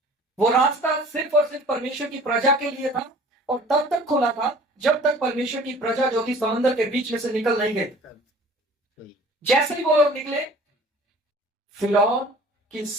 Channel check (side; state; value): both; normal; correlation 0.47